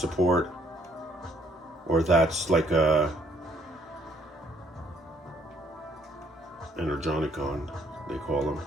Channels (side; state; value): both; normal; correlation 0.66